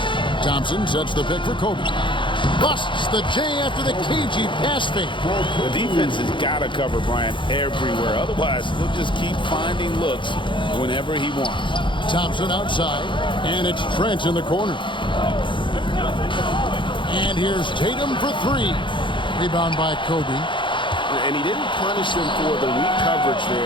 Thompson sets the pick for Kobe. Busts the J after the cagey pass fake. The defense has got to cover Bryant everywhere. Otherwise, he'll just keep finding looks whenever he wants. Thompson outside, and it's Trent in the corner. And here's Tatum for three. Rebound by Kobe. And he didn't punish them for the weak coverage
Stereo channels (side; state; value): right; late; 0.23 ms